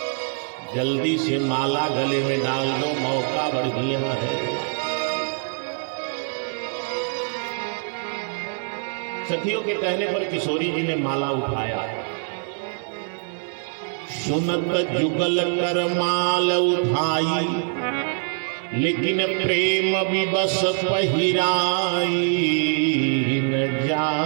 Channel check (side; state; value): left; silent; 58 dB below the other